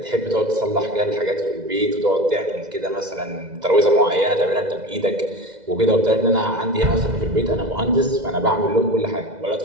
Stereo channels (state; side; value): late; left; 2.0 ms